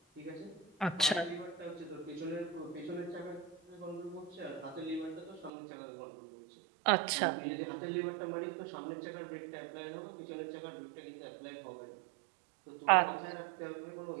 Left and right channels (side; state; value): left; drops out; at 5.5 s